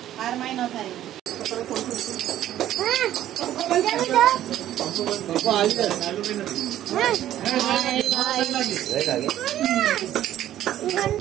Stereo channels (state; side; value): quieter; left; 12.4 dB